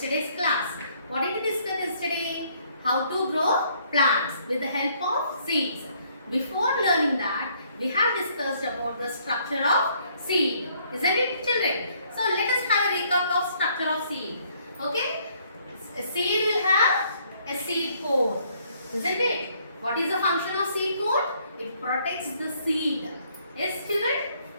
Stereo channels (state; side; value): inverted; both; correlation -0.66